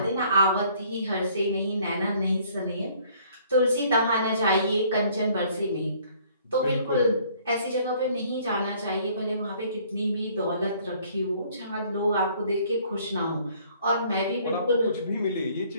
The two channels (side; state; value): both; inverted; correlation -0.59